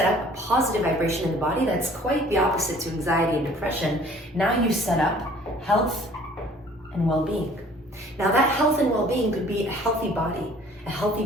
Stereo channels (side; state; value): both; normal; correlation 0.53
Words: up a positive vibration in the body that's quite the opposite to anxiety and depression. Now you set up health and well-being. Now that health and well-being could be a healthy body, a